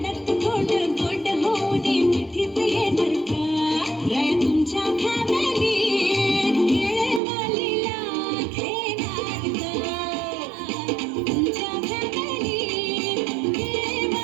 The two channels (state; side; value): drops out; left; at 7.2 s